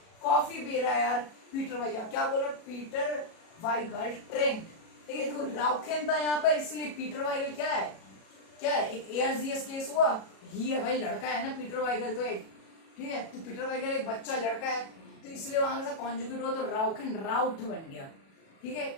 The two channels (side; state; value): right; late; 37 ms